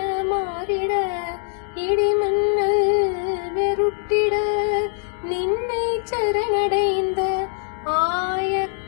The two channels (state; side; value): silent; right; digital silence